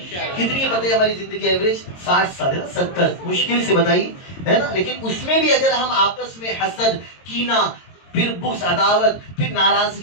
کتنی بتائیے ہماری زندگی ایوریج 60 سال ہے نا، 70 مشکل سے بتائیے، ہے نا، لیکن اس میں بھی اگر ہم آپس میں حسد، کینہ، پھر بغض، عداوت، پھر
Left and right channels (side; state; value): right; late; 22 ms